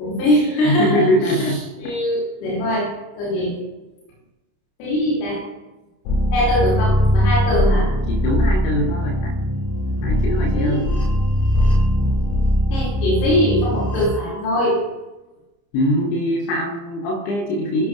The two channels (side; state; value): right; late; 30 ms